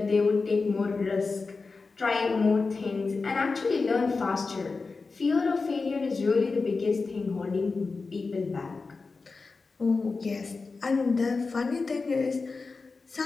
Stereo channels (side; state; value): right; quieter; 4.2 dB